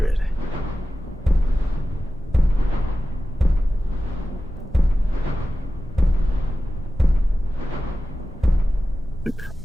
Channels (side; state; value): both; normal; correlation 0.94